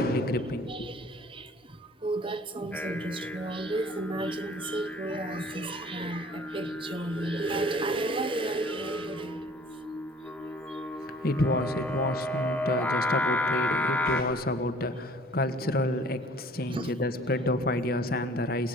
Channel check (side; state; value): both; normal; correlation 0.52